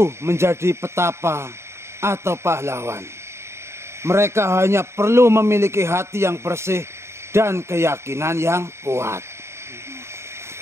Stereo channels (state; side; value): late; left; 0.13 ms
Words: menjadi petapa atau pahlawan. Mereka hanya perlu memiliki hati yang bersih dan keyakinan yang kuat.